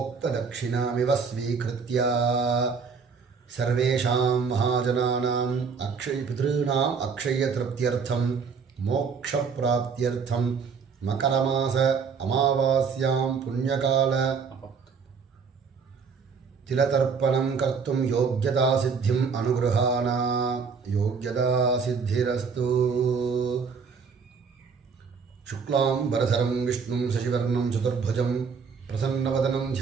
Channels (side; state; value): left; quieter; 5.6 dB